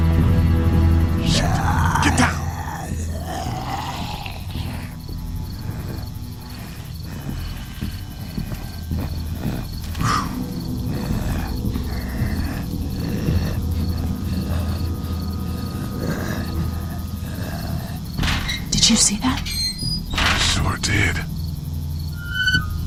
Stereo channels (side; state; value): both; identical; correlation 1.00